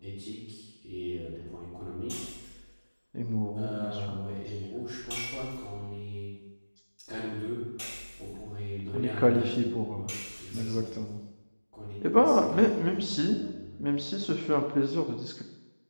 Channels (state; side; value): inverted; both; correlation -1.00